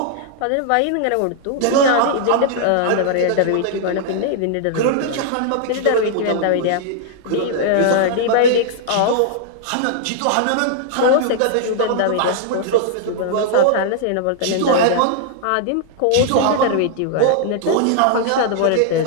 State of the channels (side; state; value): both; different; correlation -0.01